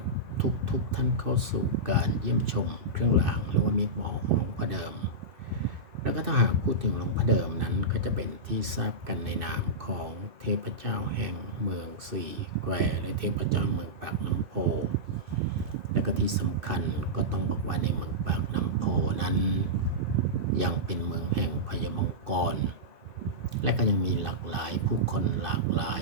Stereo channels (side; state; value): left; late; 2.6 ms